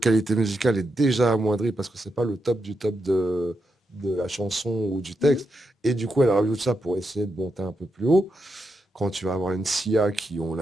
qualité musicale est déjà amoindrie parce que c'est pas le top du top de la chanson ou du Mhm. texte. Et du coup, elle rajoute ça pour essayer de monter un peu plus haut. Quand tu vas avoir une Sia qui, on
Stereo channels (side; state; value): both; normal; correlation 0.85